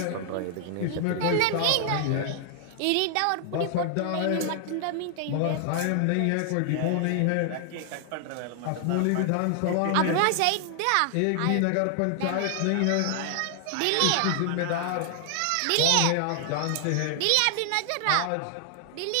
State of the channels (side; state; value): both; different; correlation 0.00